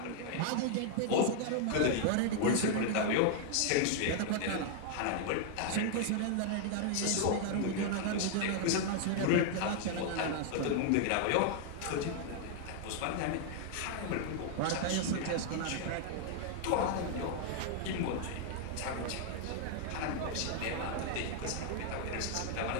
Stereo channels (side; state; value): both; different; correlation 0.00